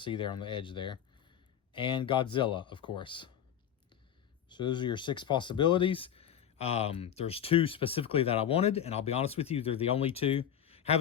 there on the edge there. And Godzilla, of course. So those are your 6 possibilities. There's 2 specifically that I wanted, and I'll be honest with you, they're the only 2.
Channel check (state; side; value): quieter; right; 9.5 dB